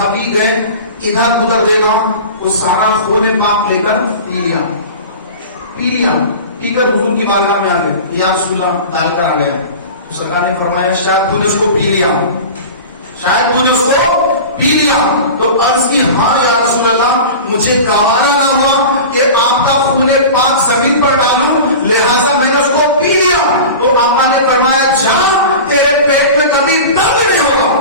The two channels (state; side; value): inverted; both; correlation -0.34